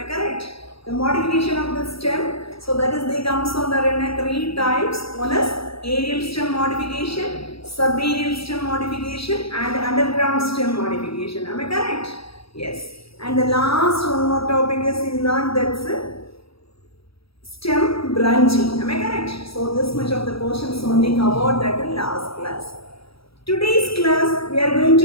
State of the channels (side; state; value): right; late; 0.76 ms